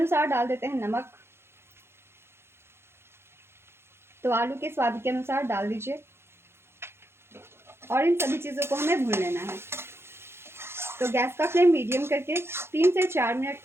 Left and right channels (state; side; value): late; left; 0.12 ms